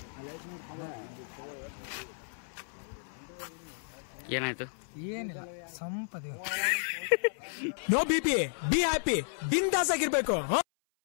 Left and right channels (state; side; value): silent; right; 56 dB below the other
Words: ಏನಾಯ್ತು? ಏನಿಲ್ಲ ಸಂಪದಿ. ನೋ ಬಿಪಿ, ಬಿ ಹ್ಯಾಪಿ, ಬಿಂದಾಸ್ ಆಗಿರ್ಬೇಕು.